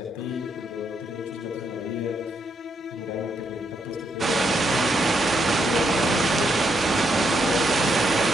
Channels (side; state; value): both; normal; correlation 0.78